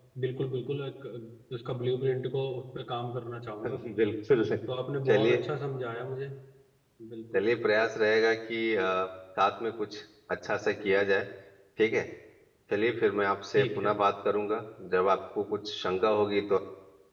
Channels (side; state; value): both; identical; correlation 1.00